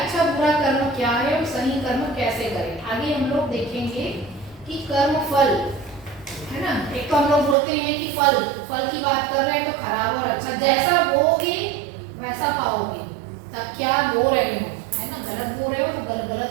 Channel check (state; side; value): drops out; left; at 7.6 s